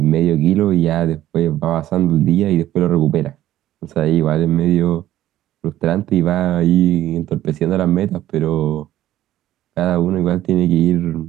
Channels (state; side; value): quieter; left; 13.5 dB